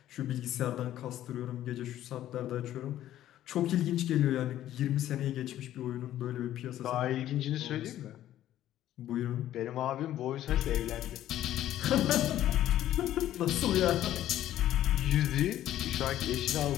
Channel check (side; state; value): right; quieter; 12.7 dB